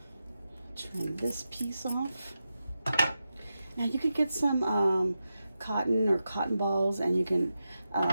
Trim this piece off. Now you could get some cotton or cotton balls, and you can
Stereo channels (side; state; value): both; inverted; correlation -0.90